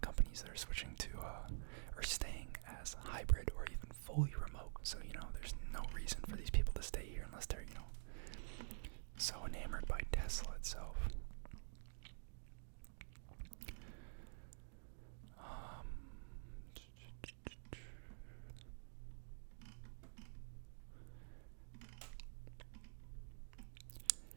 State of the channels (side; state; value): left; silent; digital silence